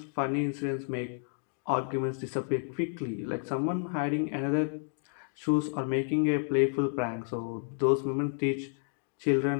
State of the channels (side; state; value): right; silent; 57 dB below the other